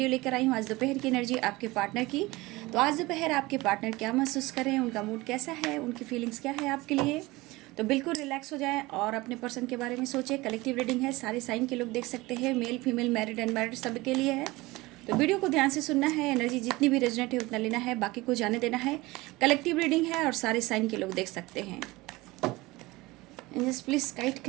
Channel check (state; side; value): quieter; left; 21.0 dB